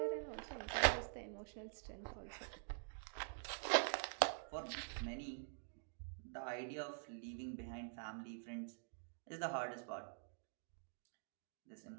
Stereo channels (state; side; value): silent; left; digital silence